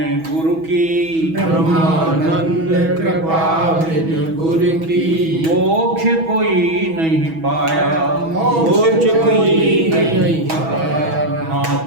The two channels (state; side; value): late; left; 6.2 ms